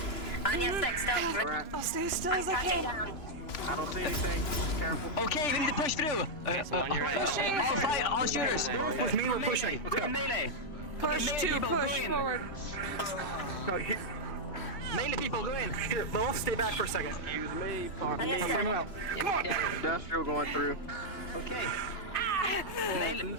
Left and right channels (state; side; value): late; right; 3.0 ms